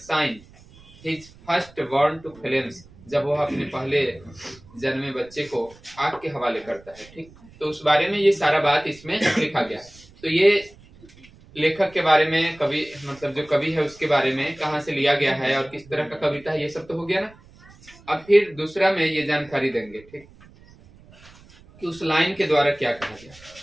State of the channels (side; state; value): right; noise; rumble, 24 dB below the sound